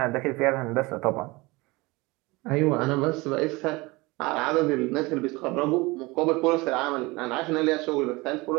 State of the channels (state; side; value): quieter; left; 23.3 dB